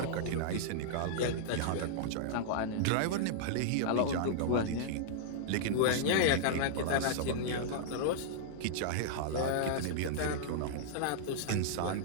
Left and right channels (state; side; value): different; both; correlation -0.01